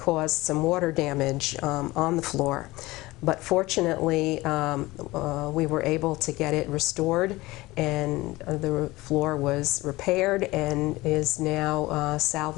some water damage on the floor. But fortunately, we were able to get it restored, and the floor was repaired and is now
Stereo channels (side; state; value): right; quieter; 20.0 dB